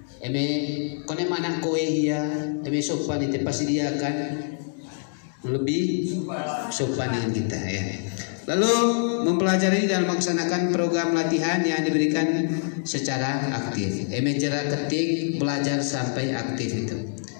Kone mana kowe ya? Sopan itu pasti dia akan lebih sopan dengan kita ya. Lalu mempelajari dan melaksanakan program latihan yang diberikan secara aktif. Jarak ketik belajar sampai aktif itu.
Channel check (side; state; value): right; silent; digital silence